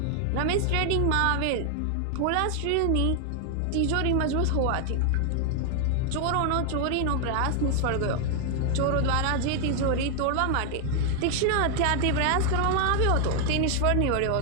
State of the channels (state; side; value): different; both; correlation 0.00